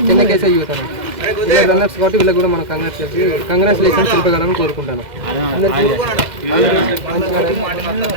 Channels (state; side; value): late; left; 2.1 ms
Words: చెన్నకేశ్వర యూత్ అన్న వీళ్ళ రన్నర్స్ కాబట్టి వీళ్ళకి కూడా మనం కంగ్రాచులేషన్ తెలపగలని కోరుకుంటాను అందరికీ.